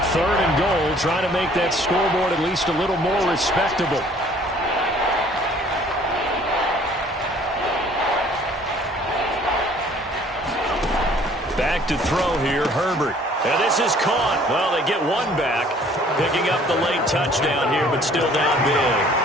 Third and goal, trying to make that scoreboard at least a little more respectable. Back to throw here, Herbert. And this is caught. Well, they get one back, picking up the late touchdown here, but still down big.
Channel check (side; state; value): both; normal; correlation 0.56